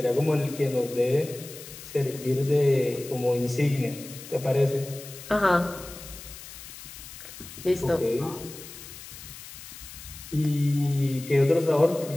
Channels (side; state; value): left; noise; hiss, 14 dB below the sound